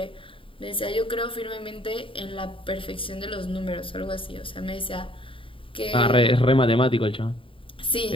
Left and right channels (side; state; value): right; late; 0.25 ms